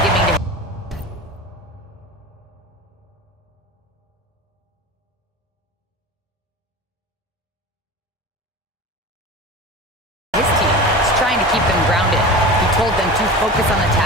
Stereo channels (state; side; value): normal; both; correlation 0.32